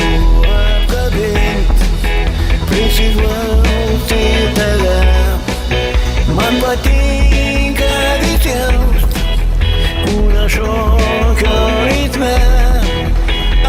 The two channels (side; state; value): both; identical; correlation 1.00